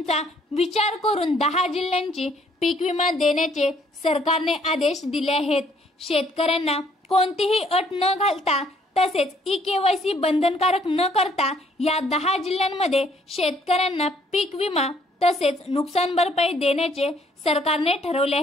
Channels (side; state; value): both; normal; correlation 0.65